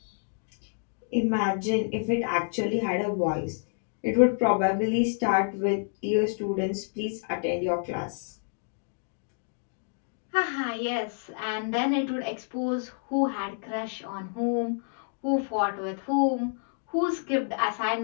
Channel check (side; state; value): right; silent; digital silence